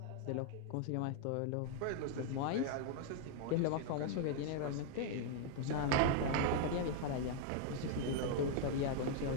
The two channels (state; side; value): different; both; correlation 0.00